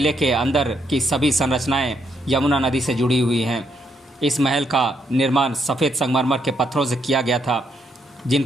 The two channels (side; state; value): both; normal; correlation 0.75